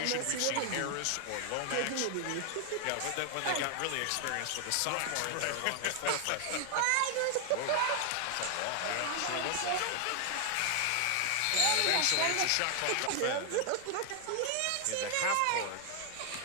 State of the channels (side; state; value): both; different; correlation 0.00